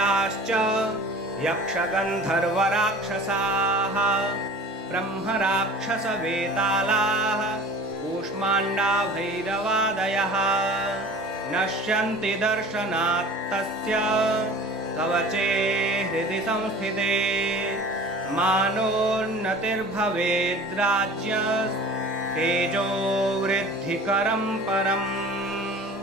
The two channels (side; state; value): both; normal; correlation 0.42